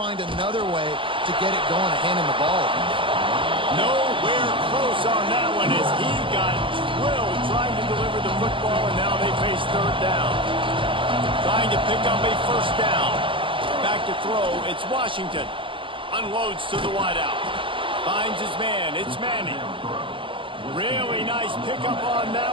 another way to get it going and hand him the ball. Nowhere close on that one as he got drilled trying to deliver the football, and now they face third down. Trying to pick up a first down. Back to throw. It's Washington. Unloads to the wideout. Finds his man. It's Manning. Really nice pickup on that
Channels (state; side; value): late; left; 0.25 ms